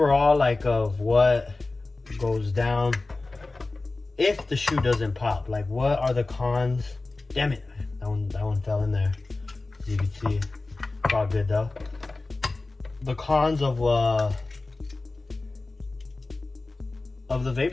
of what goes down if the shoe doesn't pop. Like, what are the cons? Damn it, that one fell in there. As you can see, it's all good though. The cons of the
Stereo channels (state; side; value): quieter; right; 3.3 dB